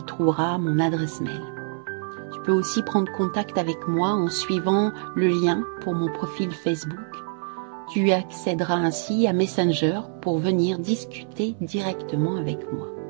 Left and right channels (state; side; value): silent; left; 62 dB below the other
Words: trouveras mon adresse mail. Tu peux aussi prendre contact avec moi en suivant le lien pour mon profil Facebook. Tu accéderas ainsi à Messenger pour venir discuter directement avec moi.